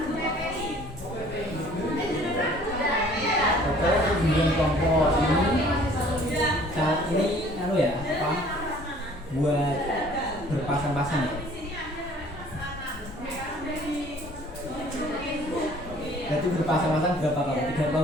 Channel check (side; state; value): both; normal; correlation 0.54